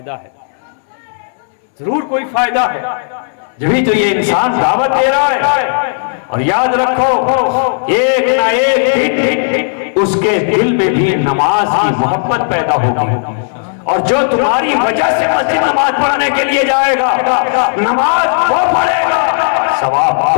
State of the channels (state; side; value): silent; right; digital silence